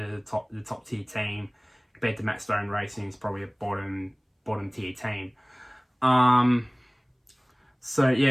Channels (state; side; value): identical; both; correlation 1.00